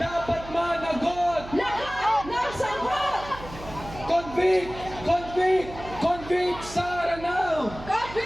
dapat managot. Lahat ng sagot! Convict, convict, convict Sara now.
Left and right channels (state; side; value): noise; right; hum, 14 dB below the sound